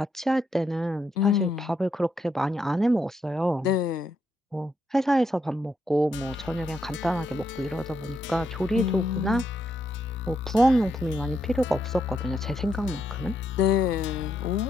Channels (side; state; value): both; normal; correlation 0.78